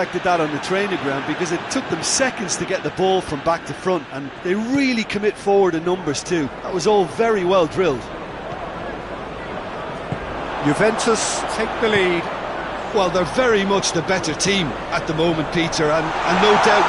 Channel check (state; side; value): identical; both; correlation 1.00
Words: that on the training ground because it took them seconds to get the ball from back to front, and they really commit forward in numbers too. That was all very well drilled. Juventus take the lead. Well, they're very much the better team at the moment, Peter, and no doubt